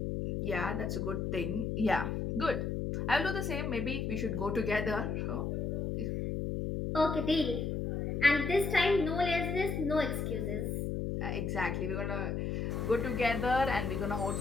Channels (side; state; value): left; noise; hum, 1 dB below the sound